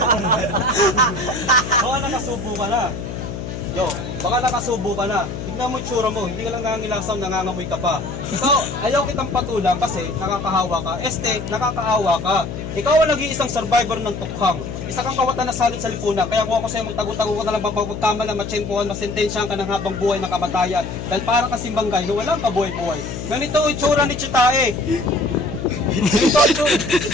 Baka nakasubo ka na. Yo, baka nakasubo ka na. Tignan mo yung tsura mo, hindi ka lang nangangilasaw, nangangamoy ka pa. Ikaw, ayaw kitang patulang kasi nakakahawa ka. Nakakaawa ka. Ikaw ang nag-iisang survivor ng tukhang. Isa kang kawatan na salit sa lipunan. Kaya kung ako sa'yo, magtago-tago ka na lang mapagpagtama na matsyempohan, masentensyahan ka ng habang buhay na kamatayan. Dahil para kang simbanggay na walang kabuhay-buhay. Ganito yung tsura ni Chitae.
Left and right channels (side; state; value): left; noise; hum, 7 dB below the sound